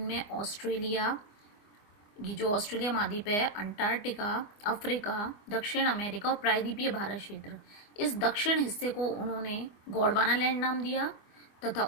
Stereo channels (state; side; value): late; right; 24 ms